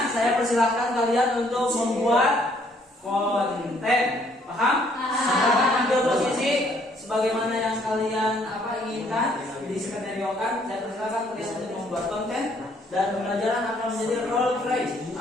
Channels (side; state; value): both; normal; correlation 0.65